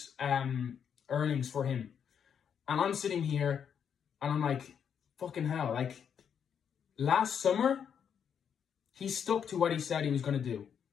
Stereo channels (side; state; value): right; quieter; 7.8 dB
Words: earnings for him. And I'm sitting here and I'm like, fucking hell, like last summer, he stuck to what he said he was going to do.